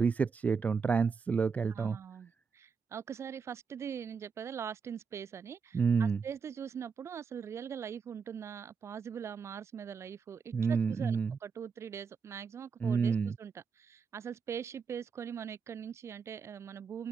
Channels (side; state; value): left; quieter; 5.6 dB